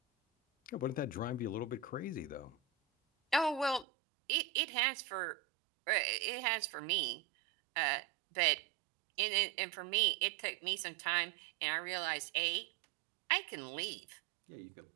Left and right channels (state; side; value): drops out; left; at 3.9 s